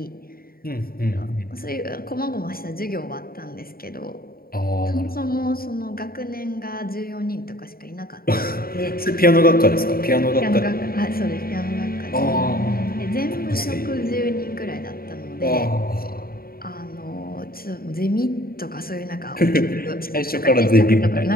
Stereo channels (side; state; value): right; late; 0.43 ms